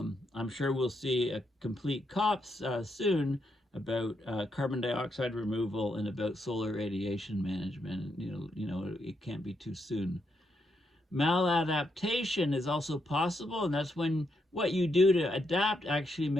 sure we'll see a complete COPs soon about carbon dioxide removal and about solar radiation management. It can't be too soon. Maladaptation is also possible, and that's when what you do to adapt actually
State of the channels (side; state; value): both; normal; correlation 0.80